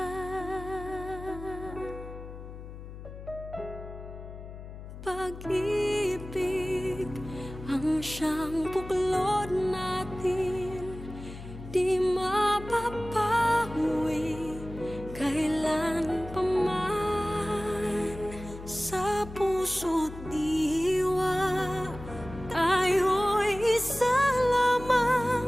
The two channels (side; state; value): left; noise; hum, 12 dB below the sound